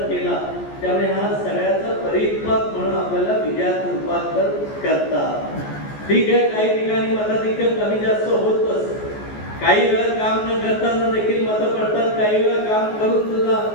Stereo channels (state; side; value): late; right; 14 ms